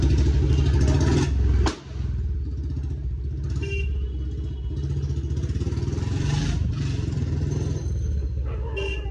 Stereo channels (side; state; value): both; identical; correlation 1.00